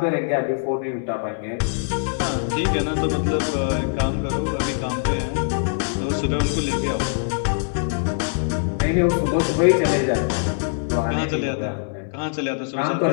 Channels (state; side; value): silent; right; digital silence